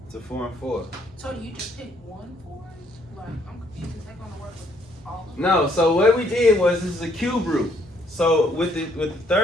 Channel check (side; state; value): both; normal; correlation 0.67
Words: to 4 and 4. So you just picked one for it? Like, I'm confused. Is that gonna work with all of them? No, so what we did was this is a cube root. So with the